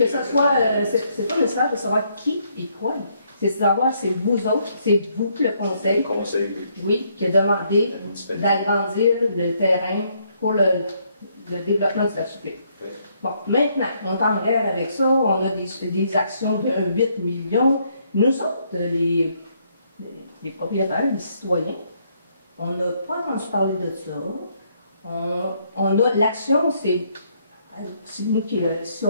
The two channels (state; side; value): inverted; both; correlation -0.71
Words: ce soit, c'est pas nécessaire de savoir qui et quoi. C'est de savoir, c'est vous autres, c'est vous, le conseil. Le conseil, oui. Oui, qui a demandé d'agrandir le terrain pour le développement de la cité. Oui. Bon, maintenant, on est en guerre avec ça, on a des actions de 8 millions. Nous autres, les propriétaires, les citoyens, on n'a pas entendu parler de ça. On a l'action, c'est nous qui, si